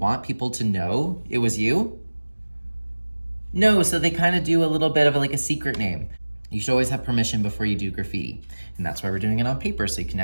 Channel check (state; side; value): inverted; both; correlation -1.00